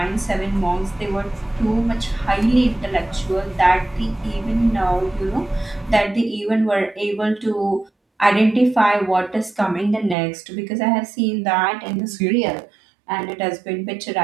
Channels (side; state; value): left; drops out; at 10.2 s